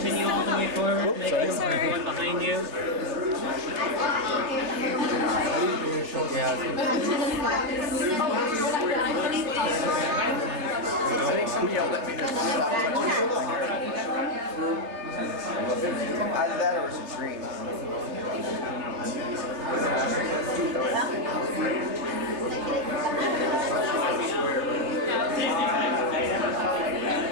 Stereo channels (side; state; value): left; late; 3.2 ms